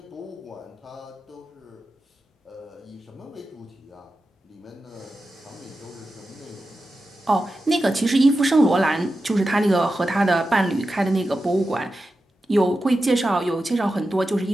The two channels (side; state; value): both; normal; correlation 0.92